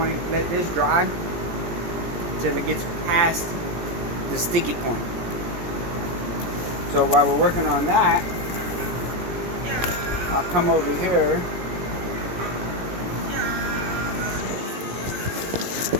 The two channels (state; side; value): late; left; 17 ms